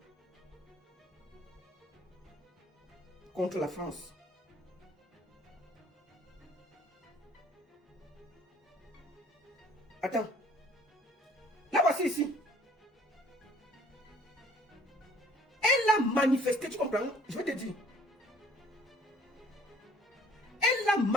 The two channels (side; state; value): both; normal; correlation 0.55